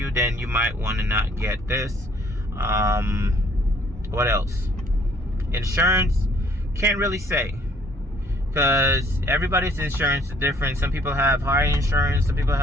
then you might want to not get this. What else? Insurance, can't really say, because everybody's insurance is different. Some people have higher insurance, some people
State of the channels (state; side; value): normal; both; correlation 0.61